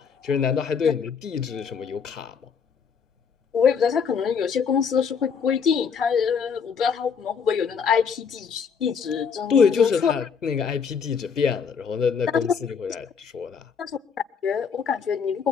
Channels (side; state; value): right; quieter; 6.4 dB